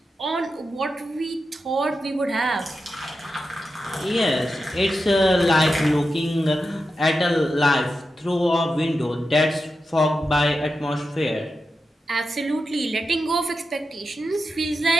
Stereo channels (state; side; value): normal; both; correlation 0.89